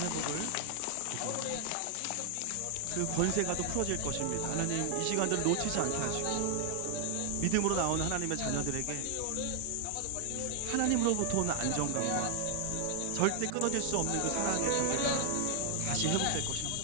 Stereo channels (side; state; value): both; different; correlation 0.00